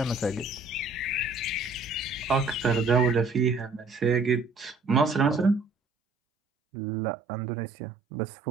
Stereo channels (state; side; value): drops out; left; at 5.7 s